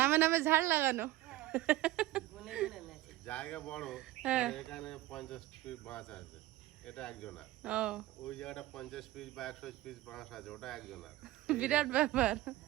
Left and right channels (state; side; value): quieter; left; 16.0 dB